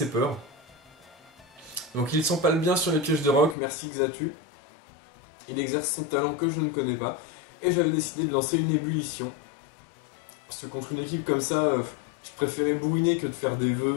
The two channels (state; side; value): drops out; right; at 3.6 s